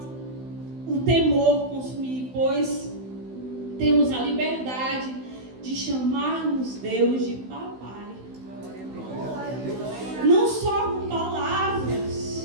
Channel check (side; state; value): left; late; 16 ms